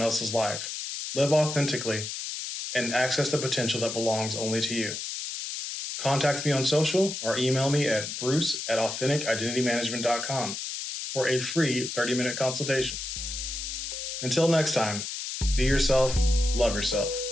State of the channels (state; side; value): noise; left; hiss, 6 dB below the sound